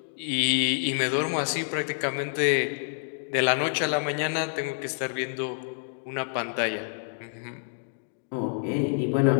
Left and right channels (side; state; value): right; silent; digital silence